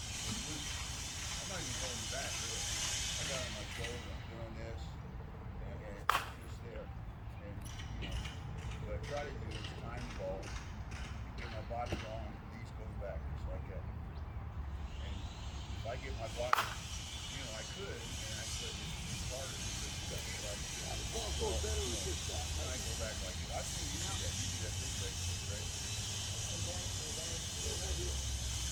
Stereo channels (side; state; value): both; identical; correlation 1.00